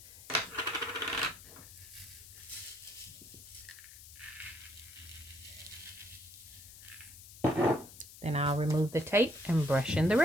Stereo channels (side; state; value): left; noise; hiss, 17 dB below the sound